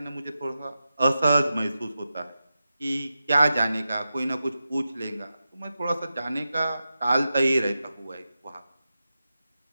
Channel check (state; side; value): inverted; both; correlation -0.91